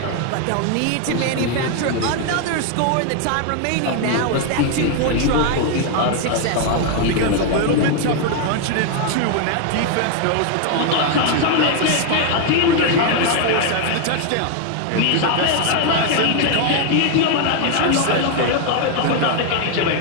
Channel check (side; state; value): both; different; correlation 0.00